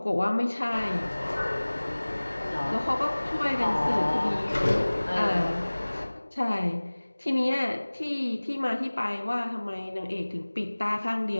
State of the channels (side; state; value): both; inverted; correlation -1.00